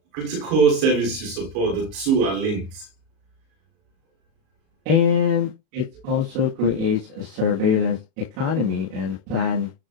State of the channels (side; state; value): left; late; 37 ms